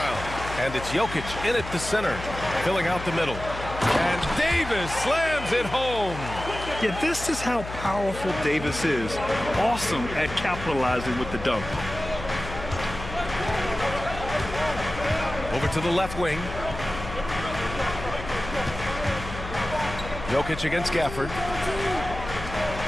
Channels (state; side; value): noise; left; hum, 10 dB below the sound